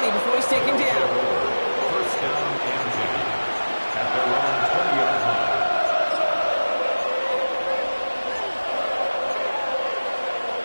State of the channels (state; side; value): inverted; both; correlation -1.00